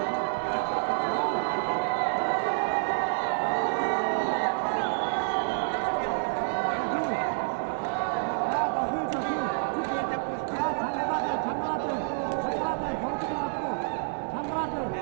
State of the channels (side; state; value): left; silent; 59 dB below the other